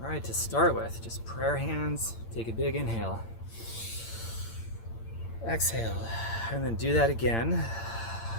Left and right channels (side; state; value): right; late; 8.8 ms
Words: All right, to start with, just prayer hands. Take a big inhale. Exhale, and then do that again.